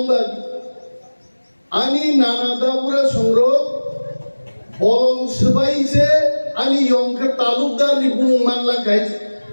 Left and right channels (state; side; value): inverted; both; correlation -1.00